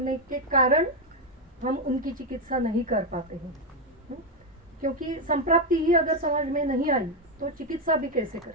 के कारण हम उनकी चिकित्सा नहीं कर पाते हैं, क्योंकि संप्राप्ति ही अगर समझ में नहीं आई तो चिकित्सा भी कैसे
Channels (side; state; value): both; normal; correlation 0.05